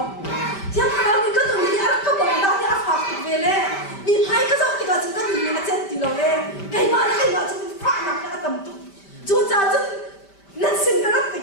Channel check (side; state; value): right; late; 5.1 ms